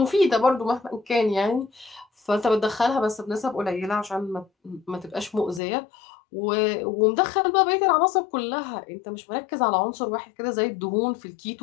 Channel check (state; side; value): drops out; right; at 5.6 s